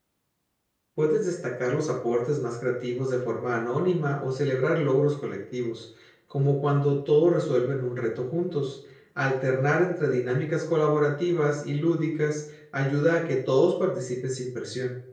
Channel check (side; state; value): both; identical; correlation 1.00